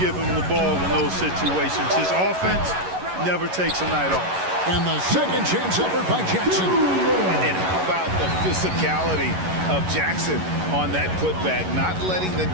him the ball in those situations. His offense never takes a night off. And the second chance effort by Jackson. And how about the physicality of Jackson on that putback, not letting the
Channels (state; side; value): late; left; 11 ms